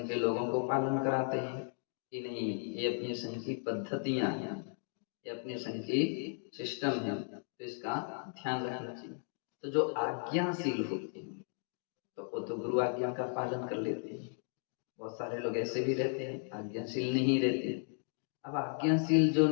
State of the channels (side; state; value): right; silent; 54 dB below the other